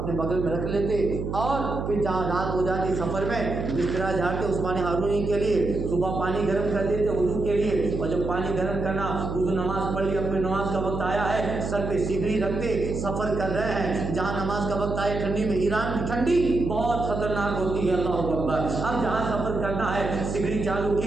بغل میں رکھ لیتے، اور پھر جہاں رات ہو جاتی سفر میں بسترا جھاڑتے عثمان ہارونی کے لیے، صبح پانی گرم کر دیتے وضو کے لیے، اور جب پانی گرم کرنا وضو نماز پڑھ لی، اپنے نماز کا وقت آیا ہے، سر پہ سیگری رکھتے، سفر کر رہے ہیں، جہاں نماز کا وقت آئے ٹھنڈی میں، ایران کی ٹھنڈی بہت خطرناک ہوتی ہے، اللہ اکبر، اب جہاں سفر کرنا ہے سیگری چالو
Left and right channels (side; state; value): right; noise; hum, 4 dB below the sound